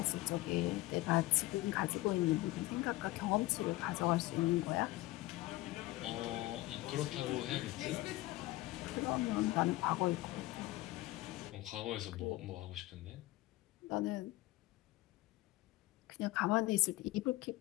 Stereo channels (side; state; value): right; quieter; 18.7 dB